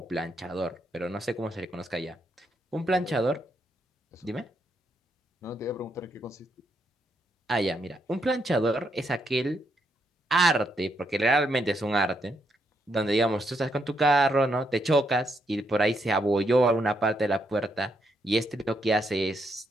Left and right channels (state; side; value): normal; both; correlation 0.78